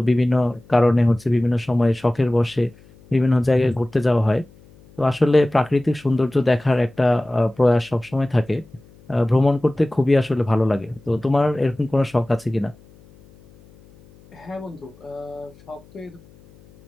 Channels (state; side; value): noise; left; hum, 26 dB below the sound